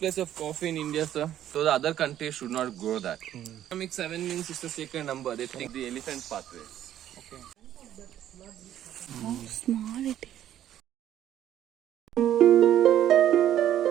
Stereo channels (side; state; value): left; quieter; 11.5 dB